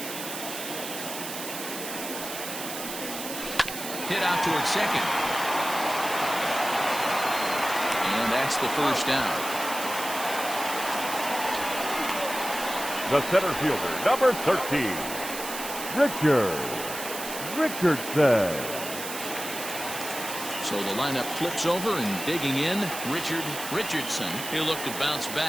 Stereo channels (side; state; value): right; noise; hiss, 8 dB below the sound